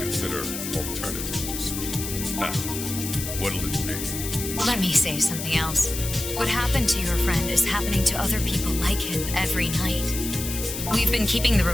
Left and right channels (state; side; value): noise; left; hiss, 6 dB below the sound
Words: alternatives. Now, what'll it be? Let me say something else. What happened to your friend is happening to other people like him every night. We've been keeping the